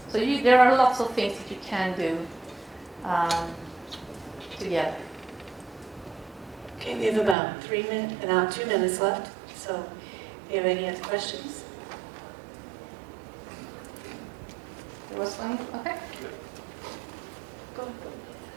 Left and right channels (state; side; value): drops out; left; at 7.4 s